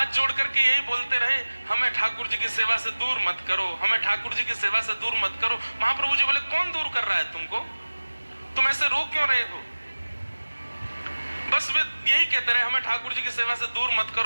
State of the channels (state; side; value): inverted; both; correlation -1.00